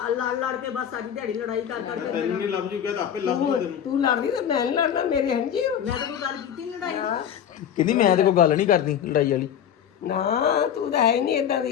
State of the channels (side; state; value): right; quieter; 9.2 dB